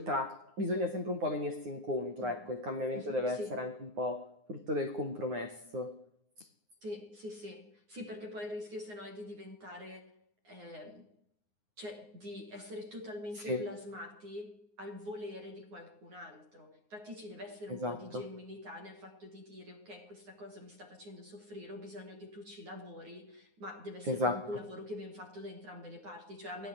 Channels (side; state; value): left; late; 9.6 ms